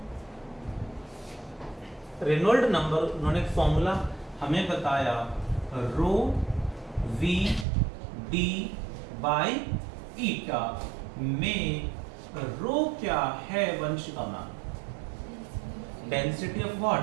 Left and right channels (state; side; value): drops out; left; at 7.7 s